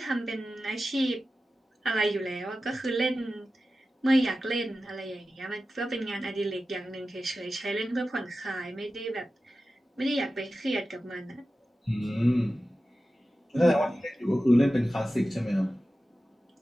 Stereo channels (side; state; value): both; normal; correlation 0.94